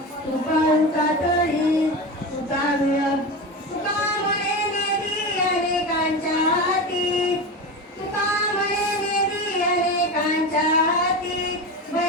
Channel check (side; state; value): both; normal; correlation 0.24